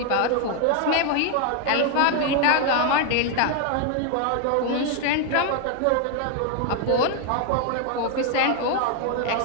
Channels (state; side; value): different; both; correlation 0.00